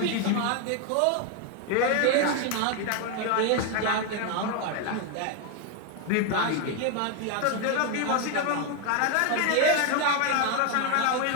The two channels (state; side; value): different; both; correlation 0.01